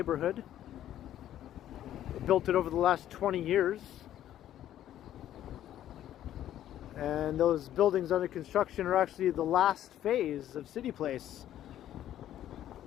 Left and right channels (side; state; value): right; quieter; 11.9 dB